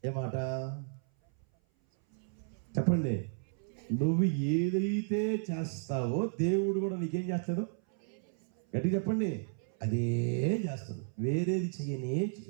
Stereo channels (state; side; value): silent; left; 56 dB below the other